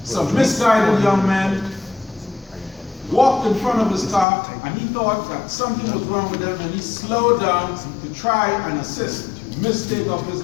some misguided young men walked in front of his car, and he thought that something was wrong with them, and he slowed down to try and assist. Mistake of his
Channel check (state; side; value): drops out; right; at 4.2 s